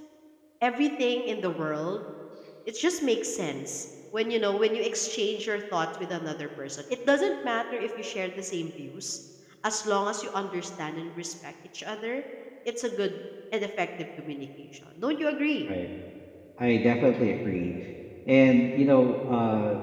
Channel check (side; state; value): both; identical; correlation 1.00